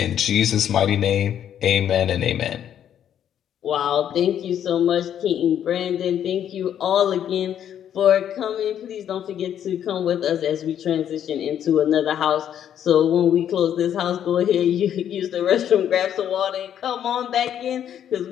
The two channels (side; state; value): right; quieter; 9.8 dB